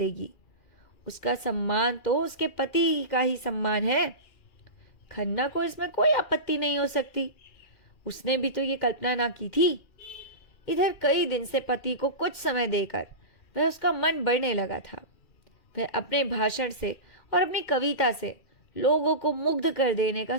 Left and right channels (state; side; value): late; right; 2.4 ms